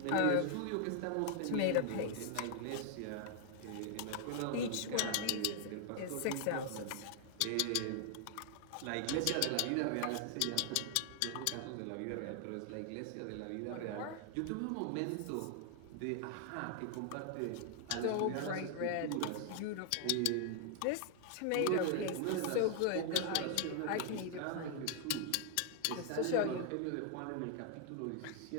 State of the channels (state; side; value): different; both; correlation 0.00